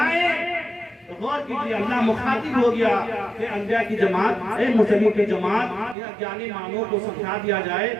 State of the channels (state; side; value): drops out; left; at 6.0 s